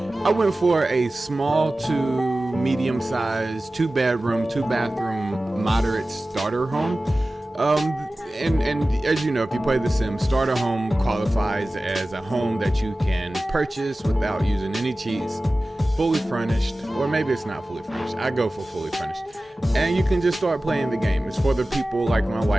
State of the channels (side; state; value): both; normal; correlation 0.96